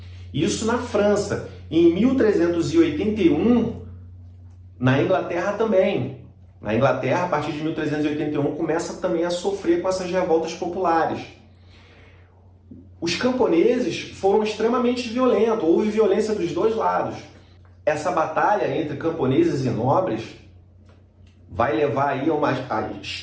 Isso na França. Em 1381, na Inglaterra também. Na Inglaterra, a partir de 1381, começa também a sofrer com essas revoltas populares. Os camponeses foram extremamente violentos, houve violência dos dois lados. Essa batalha entre camponeses e nobres vai levar aí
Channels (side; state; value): both; identical; correlation 1.00